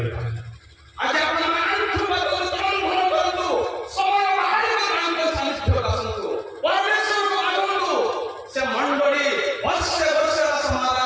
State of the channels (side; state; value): both; identical; correlation 1.00